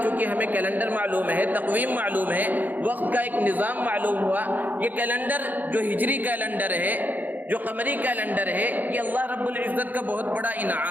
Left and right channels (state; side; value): late; left; 0.083 ms